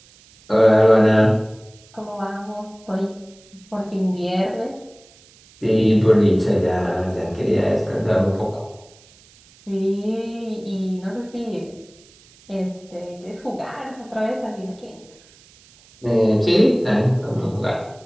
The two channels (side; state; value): right; noise; hiss, 27 dB below the sound